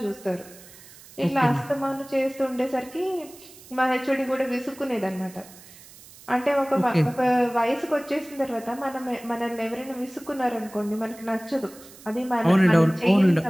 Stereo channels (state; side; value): noise; right; hiss, 21 dB below the sound